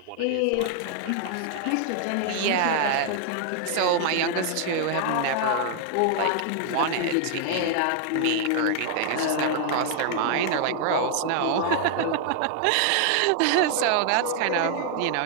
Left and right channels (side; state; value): both; different; correlation 0.00